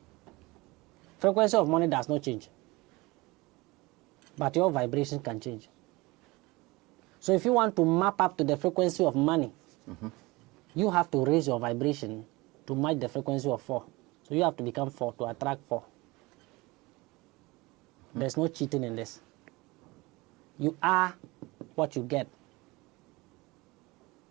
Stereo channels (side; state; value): left; quieter; 22.8 dB